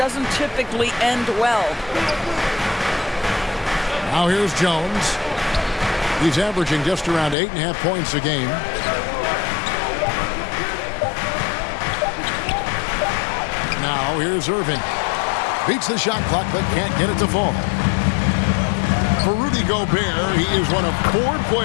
typically end well. Now here's Jones. He's averaging just around 8.5 points a game. Now here's Irving. Beats the shot clock but can't get it to fall. For Rudy Gobert, he is one of 4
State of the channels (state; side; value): drops out; right; at 7.4 s